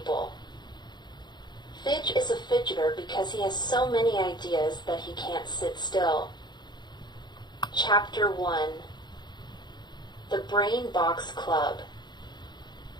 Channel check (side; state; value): right; late; 0.21 ms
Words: Fidge is a fidgeter because he has so many ideas that he can't sit still. Chapter 1. The Brain Box Club.